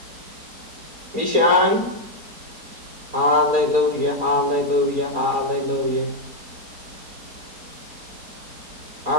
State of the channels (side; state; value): left; late; 4.2 ms